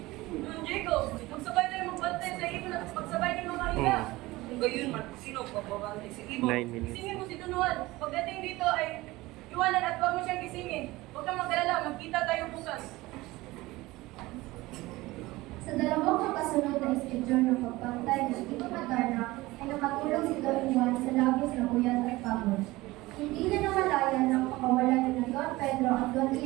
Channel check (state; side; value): quieter; left; 19.7 dB